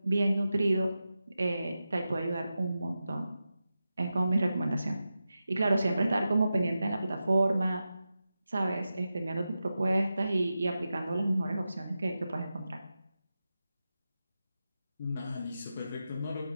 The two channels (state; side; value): inverted; both; correlation -0.91